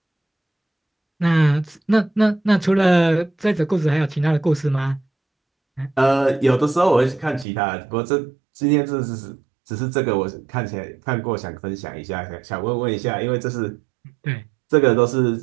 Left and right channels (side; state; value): left; drops out; at 7.5 s